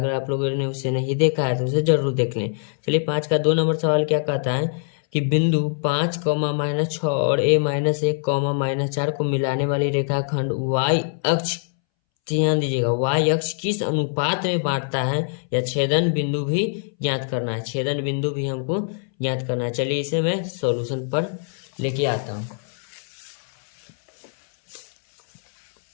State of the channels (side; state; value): right; silent; 63 dB below the other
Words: आप लोगों ने उसे नहीं देखा है तो उसे जरूर देख लें। चलिए 5 का 2 नंबर सवाल क्या कहता है कि बिंदु 5, -6 और a-1, -4 को मिलाने वाली रेखाखंड y अक्ष, ध्यान दीजिएगा, y अक्ष किस अनुपात में बांटता है या छेदन बिंदु भी ज्ञात करना है। छेदन बिंदु भी हमको ज्ञात करना है। चलिए इसे मैं सॉल्यूशन पर लेके आता हूँ।